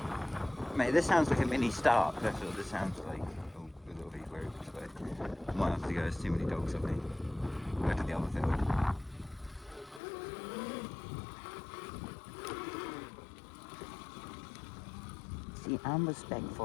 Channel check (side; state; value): right; drops out; at 10.0 s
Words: Mate, this sounds like a mini start. That's what this sounds like. Oh, a little bit weird, but I might have to go. There's too many dogs, I think. Go to the other field. See, I'm